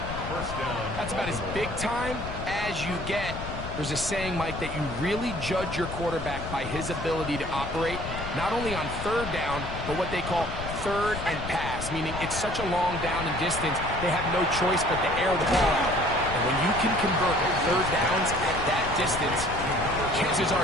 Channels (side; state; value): left; noise; rumble, 8 dB below the sound